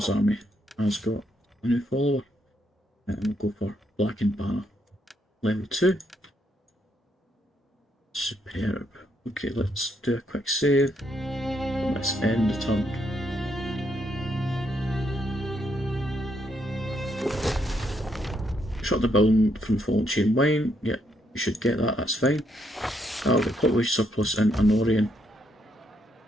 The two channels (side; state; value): both; normal; correlation 0.75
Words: army has got a new follower, and we'll go for Blackened Banner, level 2. Superb. Okay, let's do a quick save. Let's end the turn. Shut the building from Fallen Chain Wine. Yeah, you should get that, that's fine. I'll get population surplus in Anorian.